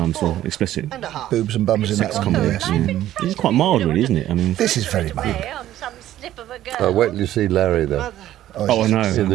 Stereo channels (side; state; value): left; quieter; 13.2 dB